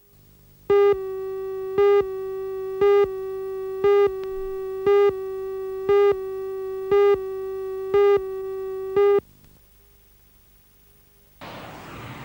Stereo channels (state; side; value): identical; both; correlation 1.00